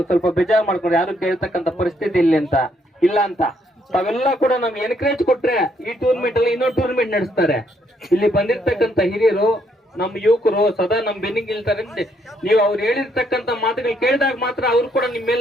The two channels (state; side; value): normal; both; correlation 0.72